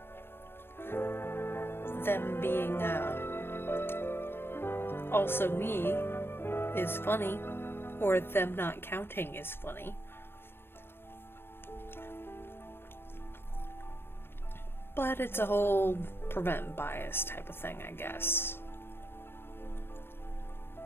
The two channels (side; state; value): right; late; 0.11 ms